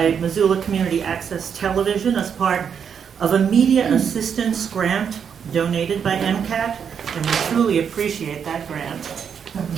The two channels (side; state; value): left; quieter; 7.3 dB